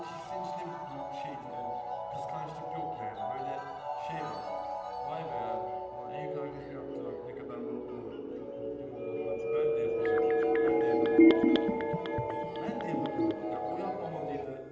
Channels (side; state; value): both; identical; correlation 1.00